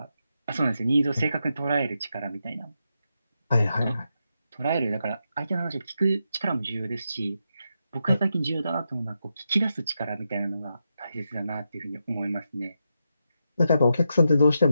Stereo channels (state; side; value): inverted; both; correlation -0.85